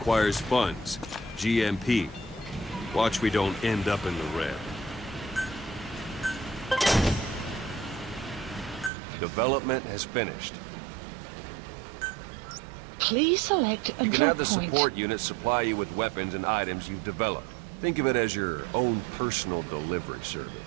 funds. GMP. Watch we don't end up in the red. Development has finished. Please select a You can drop have the point. support unit supply you with weapons and items you've developed. Think of it as your own personal delivery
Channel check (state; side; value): drops out; left; at 8.9 s